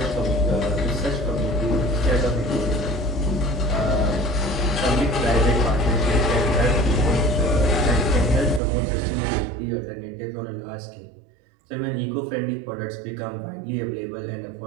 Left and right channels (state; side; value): drops out; left; at 8.6 s